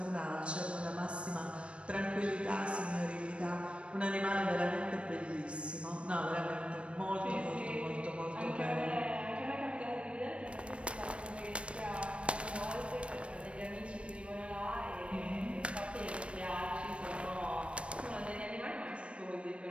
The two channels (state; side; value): late; left; 0.060 ms